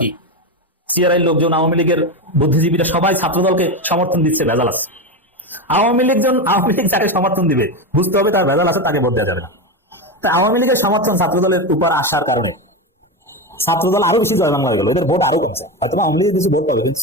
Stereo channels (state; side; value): normal; both; correlation 0.16